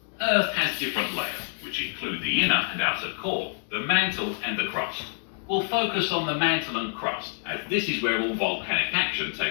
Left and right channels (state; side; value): silent; right; digital silence